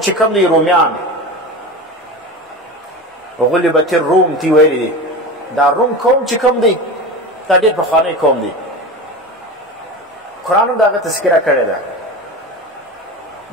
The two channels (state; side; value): normal; both; correlation 0.28